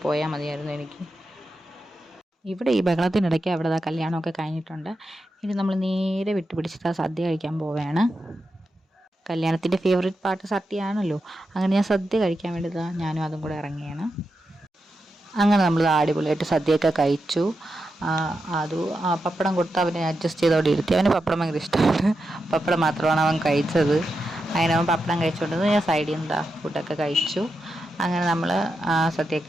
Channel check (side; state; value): both; normal; correlation 0.88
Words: മതിയായിരുന്നു എനിക്ക്. ഇവിടെ ഈ ബഹളത്തിനിടയ്ക്ക് അവിടെ കല്യാണമൊക്കെ കഴിഞ്ഞിട്ടുണ്ട്. ഇനി നമ്മൾ നേരെ വിട്ടുപിടിച്ചിട്ട് സദ്യ കഴിക്കാൻ പോവുകയാണ്. കല്യാണത്തിൻ്റെ ഫേവറേറ്റ് പാർട്ട് സദ്യയാണല്ലോ. അങ്ങനെ ഞാൻ സദ്യ കഴിക്കാൻ വേണ്ടി ഞാനും അതും കൂടെ ഇറങ്ങിയാണ്. അങ്ങനെ നമ്മൾ അടിപൊളിയായിട്ട് സദ്യയൊക്കെ കഴിച്ചു. അത് പപ്പടം കൊടുത്ത് അവനെ അഡ്ജസ്റ്റ് ചെയ്തോടെ ഇരുത്തി. അവന് പപ്പടം ഭയങ്കര ഇഷ്ടമാണ്. പപ്പടം മാത്രമാണ് അവൻ കഴിച്ചത്. അങ്ങനെ അവൻ പപ്പടം കഴിച്ചുകൊണ്ടത് ഞാൻ സൈഡിൽ നിന്ന് ഫുഡൊക്കെ കഴിച്ചു. അങ്ങനെ നമ്മൾ